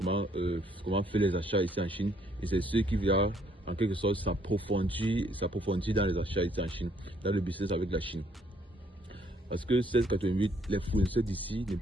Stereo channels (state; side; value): normal; both; correlation 0.67